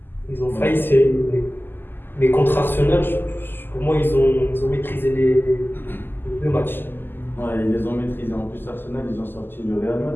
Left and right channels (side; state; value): right; late; 0.096 ms